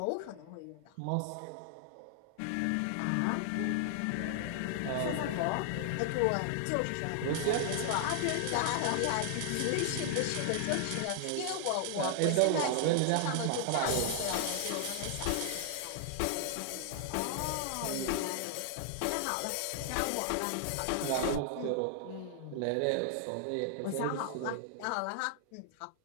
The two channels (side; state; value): both; different; correlation 0.00